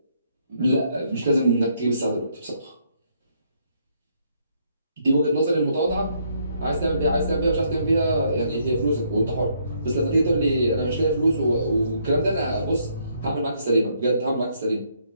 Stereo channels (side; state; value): both; inverted; correlation -0.71